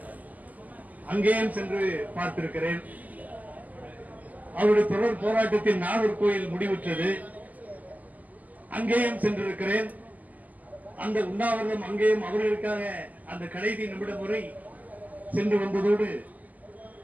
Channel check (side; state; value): left; late; 0.079 ms